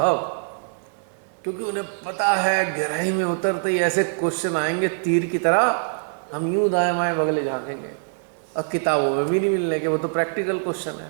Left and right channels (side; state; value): left; silent; 63 dB below the other